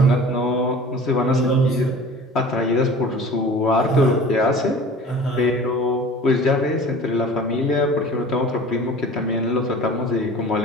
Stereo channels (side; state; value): both; normal; correlation 0.42